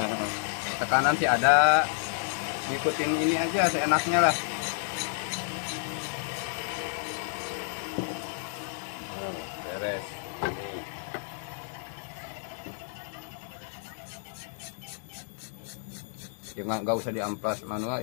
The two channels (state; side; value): silent; right; digital silence